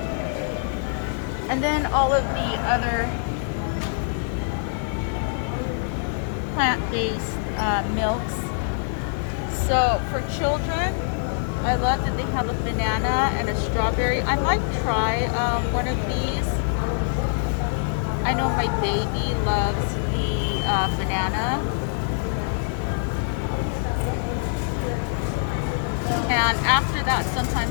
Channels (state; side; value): silent; right; 62 dB below the other